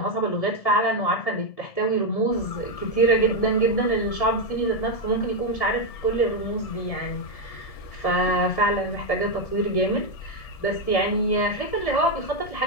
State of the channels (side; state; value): right; late; 1.7 ms